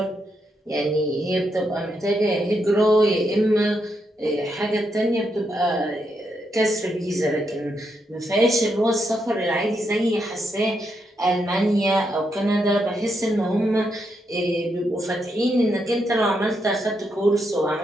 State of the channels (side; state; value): both; normal; correlation 0.81